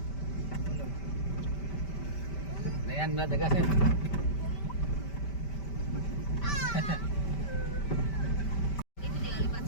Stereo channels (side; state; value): right; late; 5.1 ms